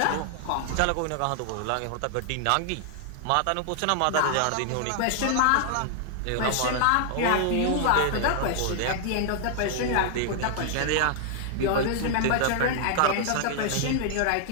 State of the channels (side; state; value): both; different; correlation -0.01